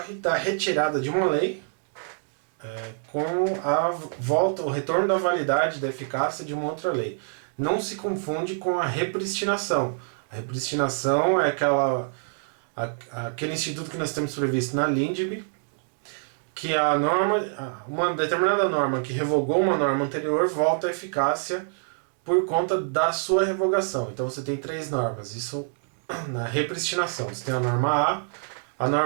da retirada de uma lei com a volta, o retorno da validade, da eficácia de uma outra lei. Não se confunde com a repristinação. A repristinação é aquele instituto que nós temos previsto na LINDB, que a norma, uma determinada norma que revogou uma norma anterior volta à eficácia por conta da sua revogação. Então você tem três normas, isso na repristinação. Você tem a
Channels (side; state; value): left; silent; digital silence